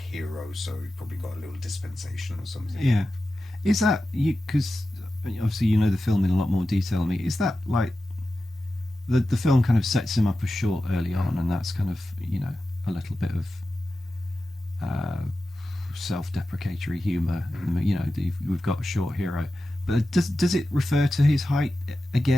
so he probably got a little dispensation or something. Yeah. Is that you? Because obviously you know the film in a lot more detail than me. Is that like the film kind of sets him up as short early on, and that's kind of, you know, a little bit of self-deprecatory humour. You know, we've got a short hero, but does it refer to his height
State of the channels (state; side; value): normal; both; correlation 0.93